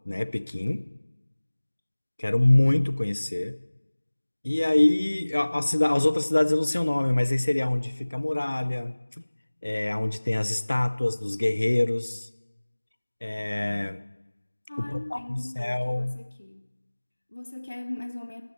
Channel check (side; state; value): both; inverted; correlation -1.00